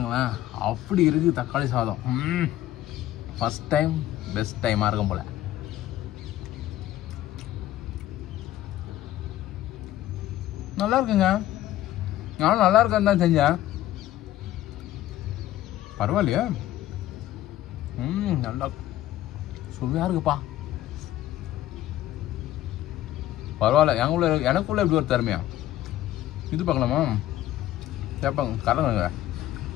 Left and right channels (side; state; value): right; quieter; 13.8 dB